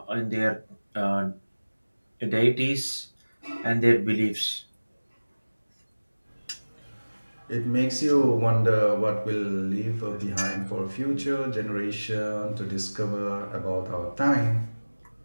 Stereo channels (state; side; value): inverted; both; correlation -1.00